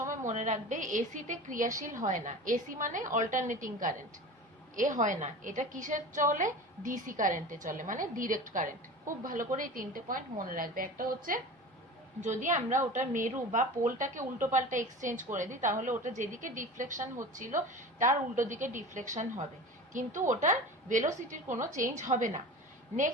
মনে রাখবে এসিতে ক্রিয়াশীল হয় না, এসি মানে অল্টারনেটিং কারেন্ট, এ হয় না, এটা কিসের চলে? ডিসি কারেন্টে চলে, মানে ডিরেক্ট কারেন্ট। খুব ভালো করে এই তিনটে পয়েন্ট মনে রাখবে। একটা হচ্ছে যদি আমরা ওটা মেরু বা পোলটাকে উল্টো পাল্টা এক্সচেঞ্জ করে দিই, তাহলে ওটা যেদিকে ডিফ্লেকশন হচ্ছিল তার উল্টো দিকে ডিফ্লেকশন হবে, কিন্তু ওটার ভেলোসিটির কোনো চেঞ্জ হবে না।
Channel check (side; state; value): both; normal; correlation 0.34